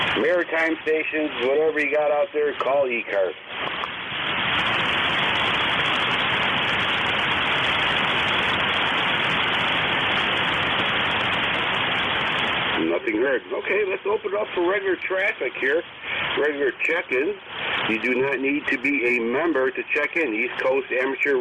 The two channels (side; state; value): both; identical; correlation 1.00